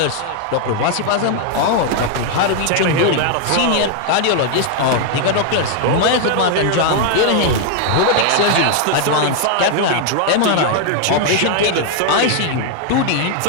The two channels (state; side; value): different; both; correlation 0.00